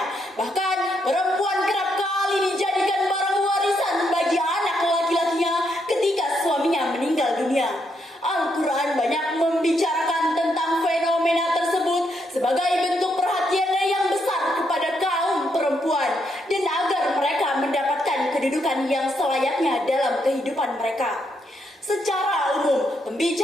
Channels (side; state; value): both; normal; correlation 0.78